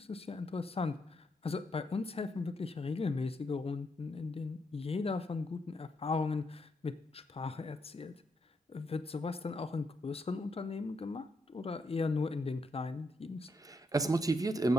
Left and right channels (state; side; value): normal; both; correlation 0.79